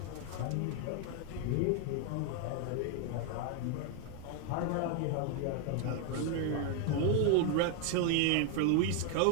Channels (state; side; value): different; both; correlation 0.01